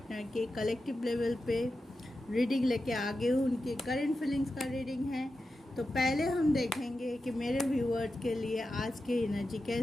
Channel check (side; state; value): both; normal; correlation 0.91